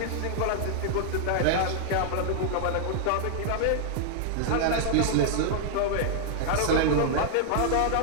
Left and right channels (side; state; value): both; different; correlation -0.01